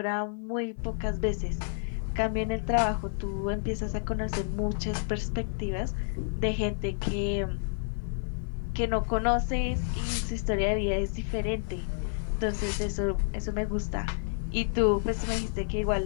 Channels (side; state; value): right; silent; 55 dB below the other